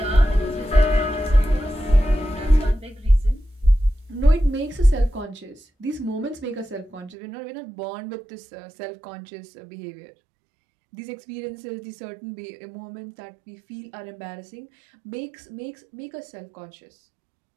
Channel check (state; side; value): drops out; left; at 7.2 s